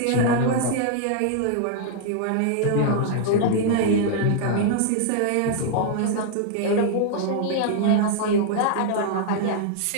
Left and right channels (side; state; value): both; different; correlation -0.01